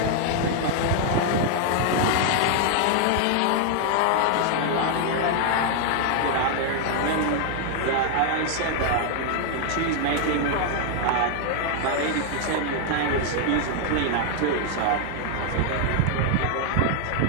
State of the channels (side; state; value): both; different; correlation 0.00